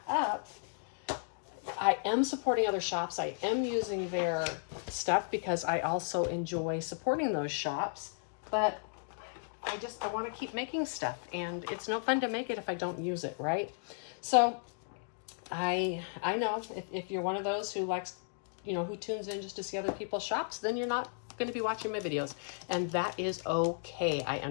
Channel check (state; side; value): silent; right; digital silence